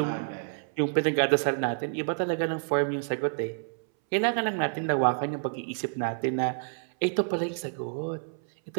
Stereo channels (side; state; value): left; silent; 59 dB below the other